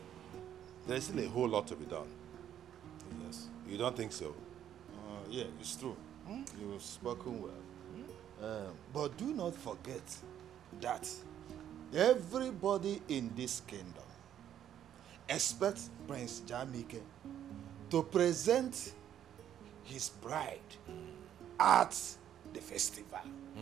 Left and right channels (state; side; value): quieter; left; 10.4 dB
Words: There's still a whole lot to be done. Yes. You don't think so? Yeah, it's true. You've spoken well. But do not forget that everybody in this kingdom expects Prince Jamike to present his bride at the festival.